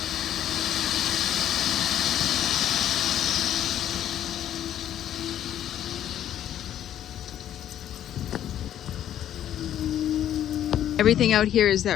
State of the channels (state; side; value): quieter; right; 11.0 dB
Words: Everything out here is